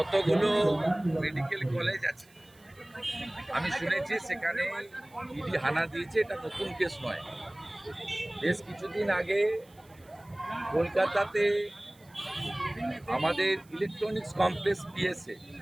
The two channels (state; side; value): noise; right; hiss, 29 dB below the sound